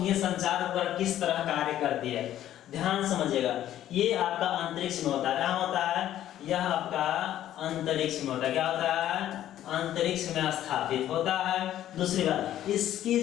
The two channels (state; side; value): quieter; right; 12.2 dB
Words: संचार उपग्रह किस तरह कार्य करती है, ध्यान समझिएगा। ये आपका अंतरिक्ष में होता है, क्या होता है? यह आपका अंतरिक्ष में होता है, क्या होता है? अंतरिक्ष में स्थापित होता है। दूसरी बात, इसकी